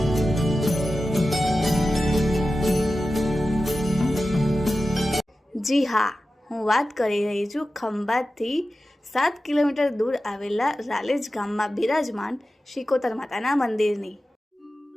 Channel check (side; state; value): both; normal; correlation 0.94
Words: જી હા, હું વાત કરી રહી છું ખંભાતથી 7 કિલોમીટર દૂર આવેલા રાલેજ ગામમાં બિરાજમાન શિકોતર માતાના મંદિરની।